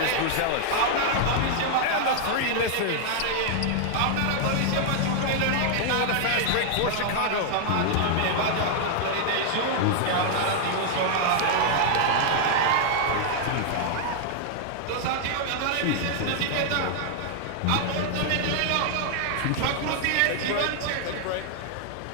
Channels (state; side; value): different; both; correlation 0.00